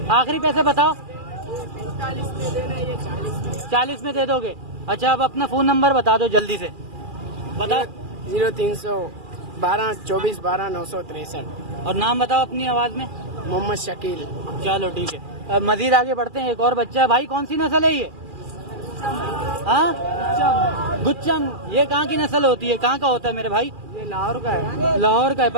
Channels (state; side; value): late; left; 2.4 ms